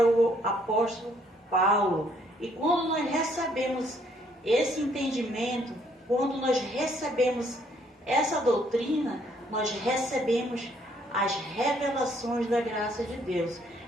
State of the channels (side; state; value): both; normal; correlation 0.66